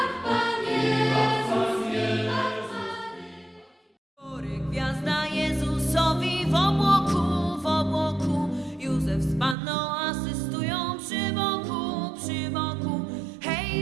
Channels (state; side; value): drops out; left; at 9.6 s